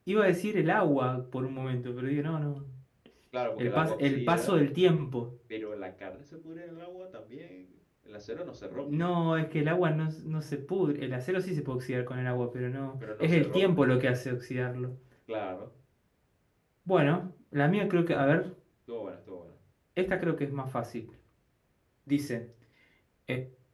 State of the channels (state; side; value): identical; both; correlation 1.00